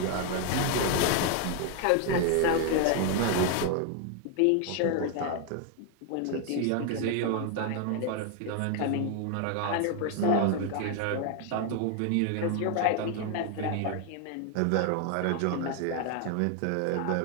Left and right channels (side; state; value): both; different; correlation 0.00